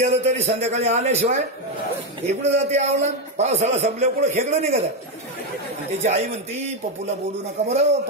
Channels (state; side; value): normal; both; correlation 0.06